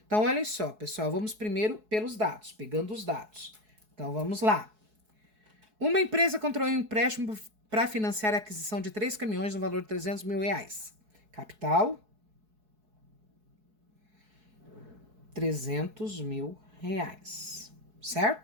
Então, olha só, pessoal, vamos primeiro pelos dados, pegando os dados. Então, vamos lá. Uma empresa contraiu um empréstimo para financiar a aquisição de 3 caminhões no valor de 300 mil reais. Capital, 300 mil reais,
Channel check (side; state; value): left; late; 4.7 ms